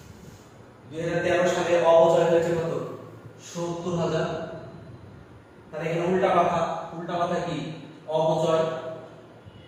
2013 সালে অবচয় হয়েছে কত? ৭০,০০০। তাহলে এখানে উল্টা কথা কি? অবচয়।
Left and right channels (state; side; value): identical; both; correlation 1.00